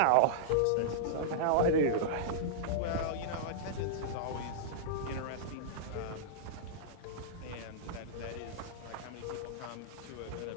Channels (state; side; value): different; both; correlation -0.03